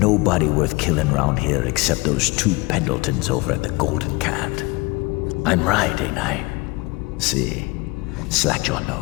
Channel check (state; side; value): quieter; right; 24.8 dB